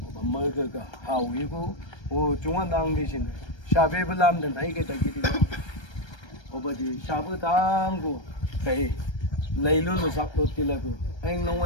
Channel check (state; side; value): late; right; 1.3 ms